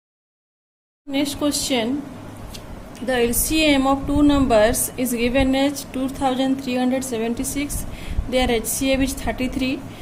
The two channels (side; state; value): both; identical; correlation 1.00